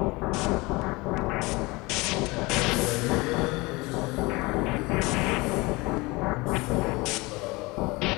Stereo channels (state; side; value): quieter; right; 23.9 dB